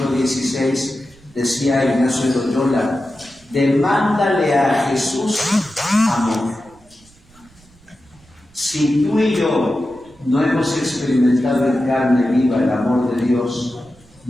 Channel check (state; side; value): noise; right; rumble, 28 dB below the sound